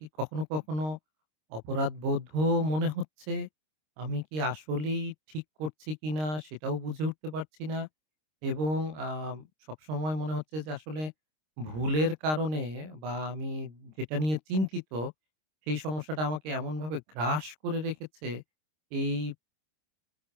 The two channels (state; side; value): late; left; 26 ms